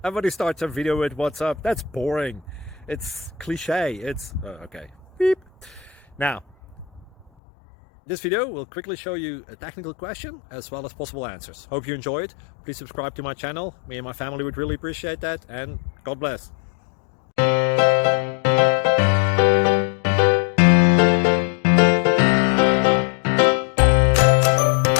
Everybody starts a video with what's up. That's boring. It's cliche. It's okay. Beep. Now, this video will quickly show you a technical question as well as possible answers. Hope you enjoy it. Please subscribe to my channel. Me and my family would really appreciate that, and God bless.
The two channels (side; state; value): right; drops out; at 7.3 s